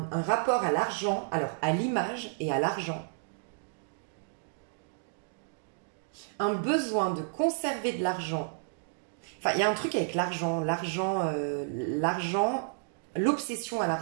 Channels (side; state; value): left; silent; digital silence